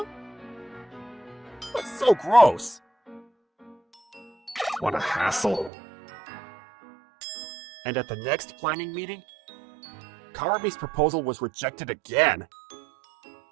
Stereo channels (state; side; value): drops out; left; at 5.7 s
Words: That's so gross. What a hassle. And at the next planning meeting, Karami's proposal was rejected again.